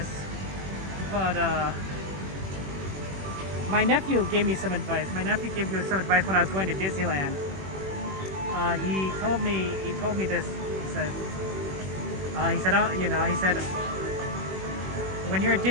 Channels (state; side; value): late; left; 21 ms